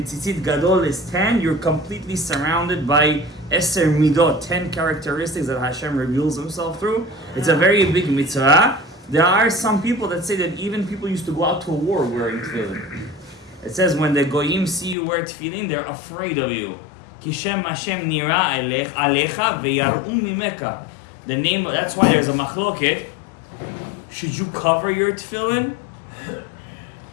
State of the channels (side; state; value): right; drops out; at 15.0 s